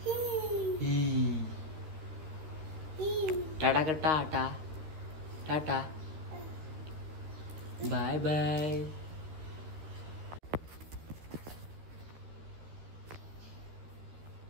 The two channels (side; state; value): left; late; 13 ms